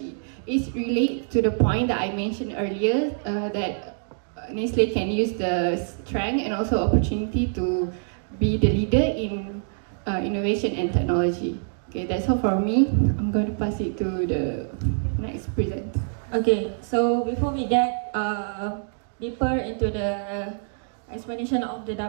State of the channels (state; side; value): silent; left; digital silence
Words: It's related to the point that I mentioned earlier that Nestle can use the strength and also opportunity to be the leader in innovation and technology. Okay, that's all for me. I'm going to pass it to the next presenter. Okay, so before we get deeper into the explanation of the